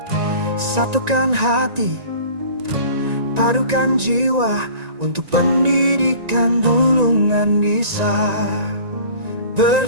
Satukan hati, padukan jiwa, untuk pendidikan Bulungan bisa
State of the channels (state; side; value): late; left; 1.9 ms